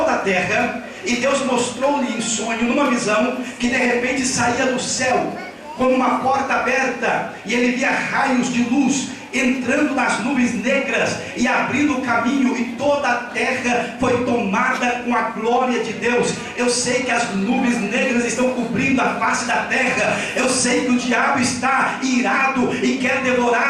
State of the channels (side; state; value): both; identical; correlation 1.00